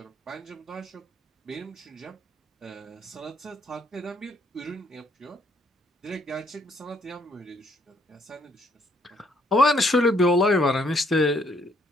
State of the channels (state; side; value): normal; both; correlation 0.69